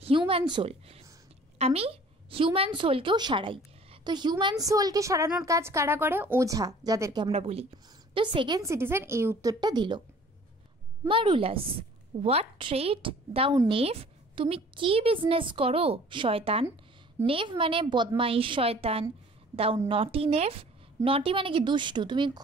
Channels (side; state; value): both; normal; correlation 0.50